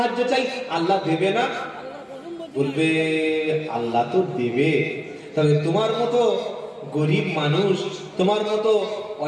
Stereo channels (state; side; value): identical; both; correlation 1.00